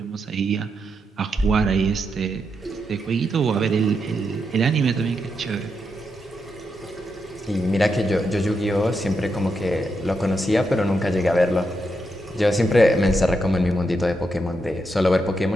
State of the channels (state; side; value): normal; both; correlation 0.83